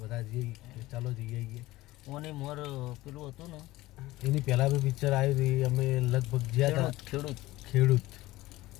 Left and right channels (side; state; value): right; quieter; 18.0 dB